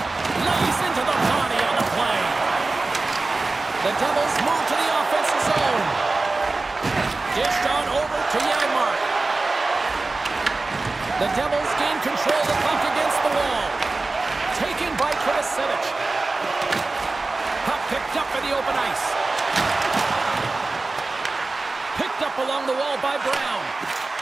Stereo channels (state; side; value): quieter; left; 3.4 dB